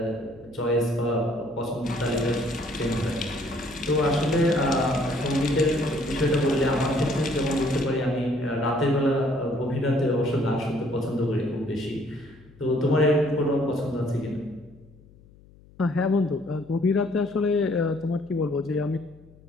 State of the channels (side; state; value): left; noise; hum, 25 dB below the sound